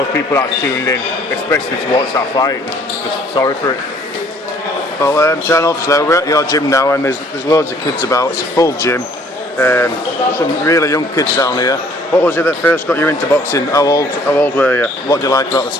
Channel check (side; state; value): both; normal; correlation 0.59